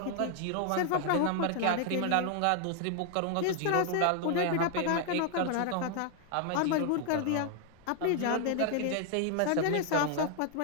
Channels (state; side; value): different; both; correlation 0.00